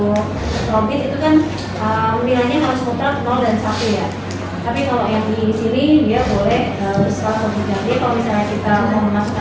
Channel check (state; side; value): identical; both; correlation 1.00